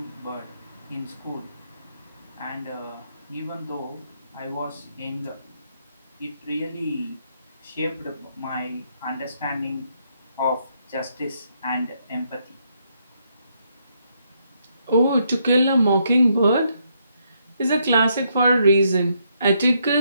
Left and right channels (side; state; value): both; inverted; correlation -0.75